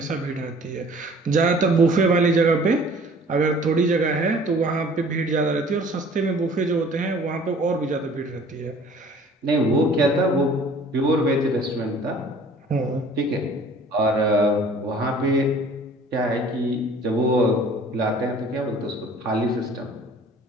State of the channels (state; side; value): normal; both; correlation 0.50